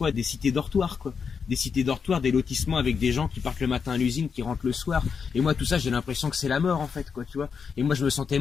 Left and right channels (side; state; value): right; quieter; 6.1 dB